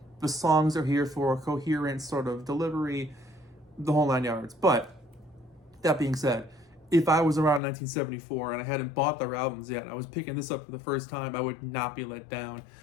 The songs are here for a coherent sort of delivery, the whole 9 yards. But, that being said, if I was around 1974 and I hadn't bought their albums yet and I was picking this up for the first time, I would not be let down.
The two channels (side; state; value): right; drops out; at 7.6 s